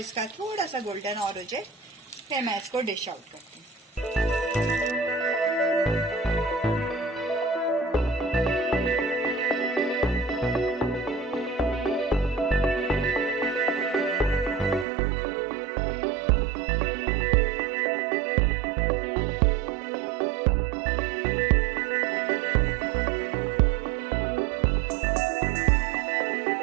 थोड़ा सा गोल्डन और हो जाए, फिर मैं इसको डिश आउट करती हूँ।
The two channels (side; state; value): left; drops out; at 14.9 s